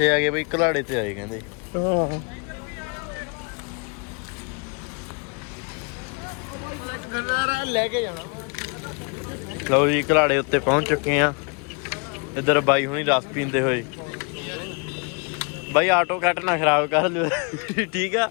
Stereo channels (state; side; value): quieter; right; 35.0 dB